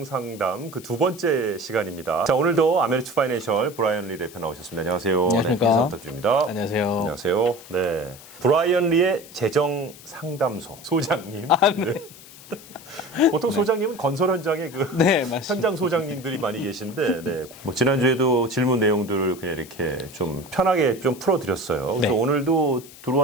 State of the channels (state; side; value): noise; left; hiss, 19 dB below the sound